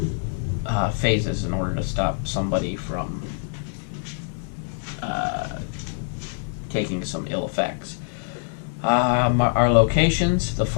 phases in order to stop somebody from taking some ill effects. Our locations: the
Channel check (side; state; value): right; silent; 60 dB below the other